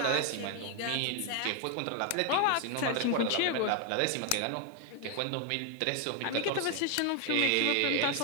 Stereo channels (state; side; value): different; both; correlation 0.00